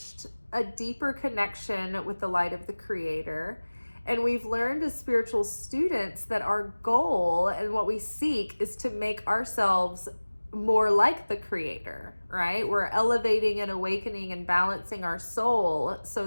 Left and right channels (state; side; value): inverted; both; correlation -1.00